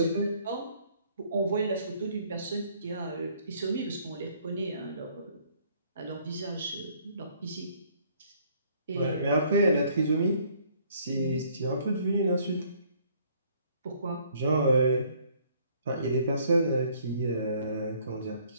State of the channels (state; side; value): inverted; both; correlation -0.62